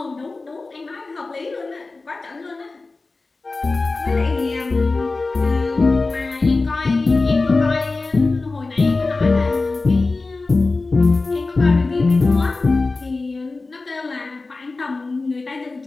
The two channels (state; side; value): quieter; right; 3.6 dB